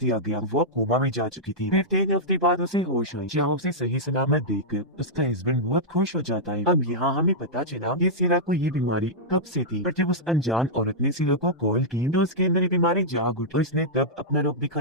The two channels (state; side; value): normal; both; correlation -0.10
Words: गया। वो कोमा में जा चुकी थी। फिर 3 हफ्ते बाद उसे होश आई, जहाँ उसे सही सलामत देखकर उसका हस्बैंड बहुत खुश हो जाता है। अब यहाँ हमें पता चला कि सीरा को ये बीमारी कब से थी, पर जब उस अनजान औरत ने सीरा को कॉल की तो उसके अंदर ये बीमारी जाग उठी। उसने तब अपना रूप